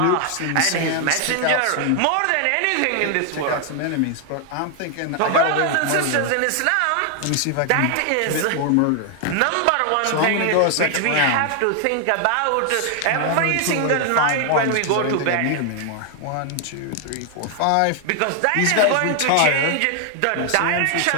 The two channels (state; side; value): different; both; correlation 0.00